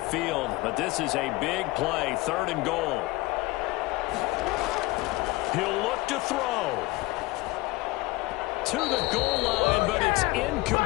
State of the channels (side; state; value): right; quieter; 21.0 dB